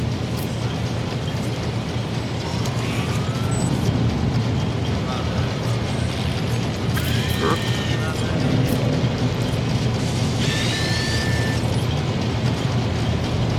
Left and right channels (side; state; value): both; identical; correlation 1.00